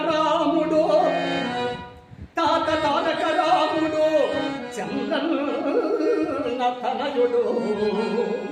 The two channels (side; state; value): both; identical; correlation 1.00